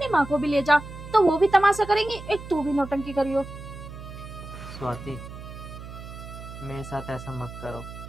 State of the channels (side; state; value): right; noise; hum, 12 dB below the sound